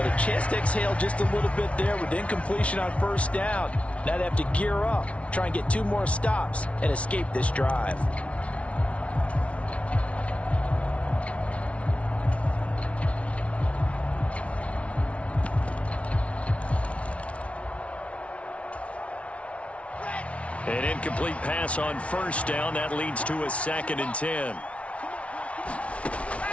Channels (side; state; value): right; late; 0.063 ms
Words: a chance to exhale just a little bit there with incompletion on 1st down. Now they have to gear up, try and get 2 more stops, and escape this drive. An incomplete pass on 1st down. That leads to a 2nd and 10.